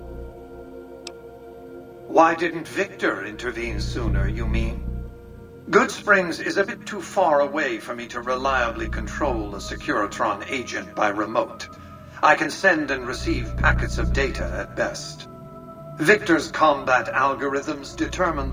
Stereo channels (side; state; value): both; identical; correlation 1.00